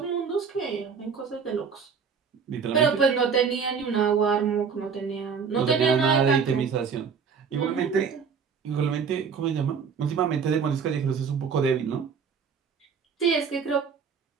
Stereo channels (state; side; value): quieter; left; 6.1 dB